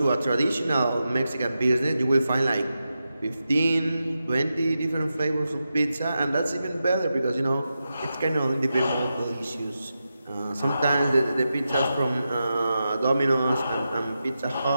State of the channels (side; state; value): both; inverted; correlation -0.89